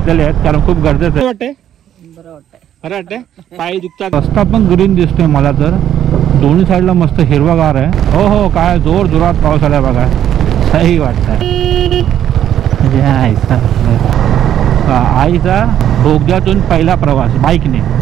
आहेत कारण खूप गरजेचं वाटतंय. बरं वाटतंय, पाय दुखतात. रस्ता पण ग्रीन दिसतोय मला तर, दोन्ही साईडला मस्त हिरवागार आहे. हो हो, काय जोर जोरात पाऊस आलाय बघा, सही वाटतंय. आईचा बोगद्यातून पहिला प्रवास बाईकने.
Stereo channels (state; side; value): quieter; left; 10.6 dB